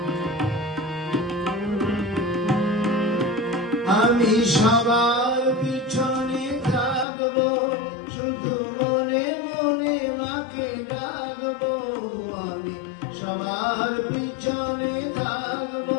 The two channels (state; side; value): drops out; right; at 7.1 s